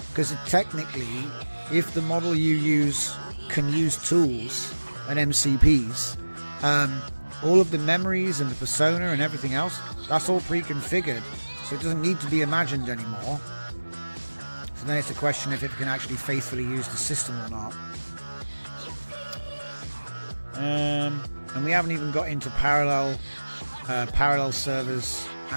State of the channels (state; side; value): inverted; both; correlation -1.00